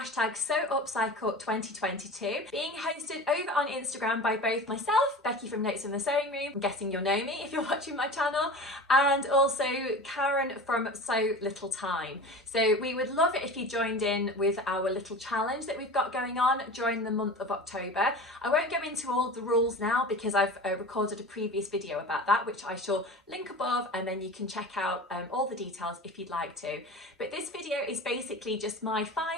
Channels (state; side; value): normal; both; correlation 0.34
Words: 2022, being hosted over on Instagram by both myself, Becky from Notes from the Sewing Room, I'm guessing you'll know me if you're watching my channel, and also Karen from Sew Little Time. So we would love it if you joined in with our little challenge that we've got going on during the month of October. I won't go into all the rules now because I've recorded a previous video about that, which I shall link above, and then you can check out all the details if you'd like to. But this video is basically just my